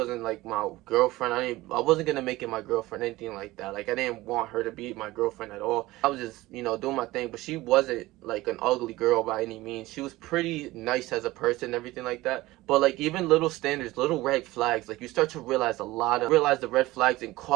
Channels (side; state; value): left; quieter; 18.5 dB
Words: like my girlfriend. I wasn't gonna make it my girlfriend, anything like that. Like I didn't want her to be my girlfriend at all. I was just, doing my thing, but she wasn't like an ugly girl by any means. She was pretty nice as a person, everything like that. But like even little standards, little red flags, like you start to realize the red flags and